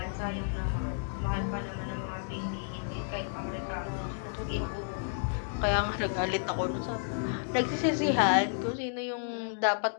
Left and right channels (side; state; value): right; silent; digital silence